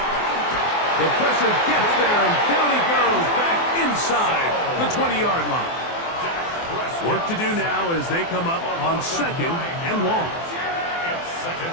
The pressure gets there, and down he goes back inside the 20-yard line. Work to do now as they come up on 2nd and long. It's 2nd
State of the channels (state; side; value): late; right; 24 ms